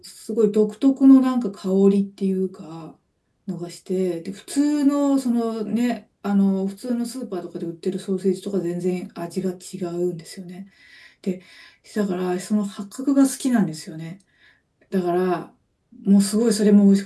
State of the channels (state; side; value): identical; both; correlation 1.00